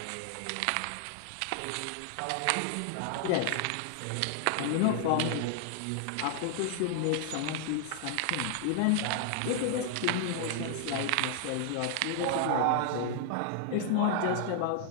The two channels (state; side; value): different; both; correlation 0.00